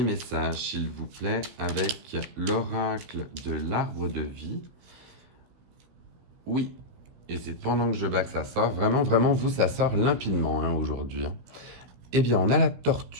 message, s'il vous plaît, avec l'oracle de l'arbre de vie? Oui, et c'est pendant que je bats que ça sort. Vraiment, vraiment, vous, ça sort limpidement hein, aujourd'hui. Hein. Eh bien, on a la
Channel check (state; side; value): late; left; 16 ms